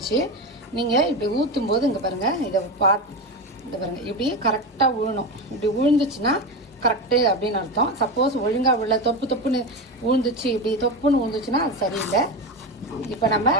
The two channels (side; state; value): both; normal; correlation 0.19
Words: நீங்க இப்படி ஊத்தும் போது இங்க பாருங்க, இதை பாருங்க, இப்படி கரெக்டா விழணும். இப்படி விழுந்துச்சுன்னா கரெக்டு அப்படின்னு அர்த்தம். சப்போஸ் ஒழுங்கா விழ தொப்புன்னு விழுந்துச்சு, இப்படி தொப்புன்னு விழுந்துச்சுன்னா அது சரியில்லை. இப்போ நம்ம